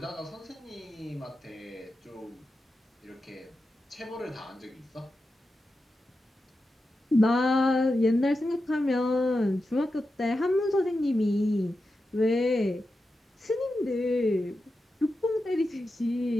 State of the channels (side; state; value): both; normal; correlation 0.90